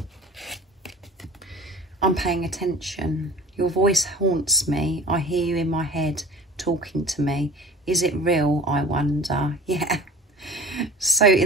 I'm paying attention. Your voice haunts me. I hear you in my head talking to me. Is it real, I wonder? Yeah. So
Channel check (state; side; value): normal; both; correlation 0.42